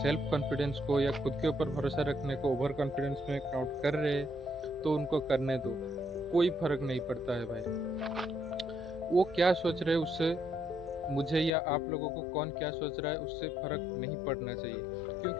सेल्फ कॉन्फिडेंस को या खुद के ऊपर भरोसा रखने को ओवर कॉन्फिडेंस में काउंट कर रहे हैं तो उनको करने दो, कोई फ़र्क नहीं पड़ता है भाई। वो क्या सोच रहे हैं उससे मुझे या आप लोगों को कौन क्या सोच रहा है उससे फ़र्क नहीं पड़ना चाहिए।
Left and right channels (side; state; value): right; drops out; at 11.5 s